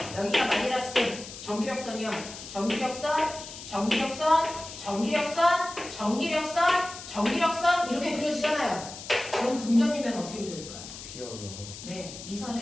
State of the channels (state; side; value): noise; left; hiss, 12 dB below the sound